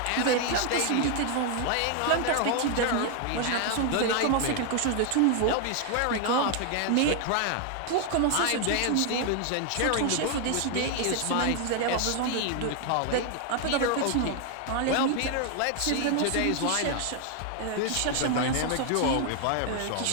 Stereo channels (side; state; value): both; different; correlation 0.00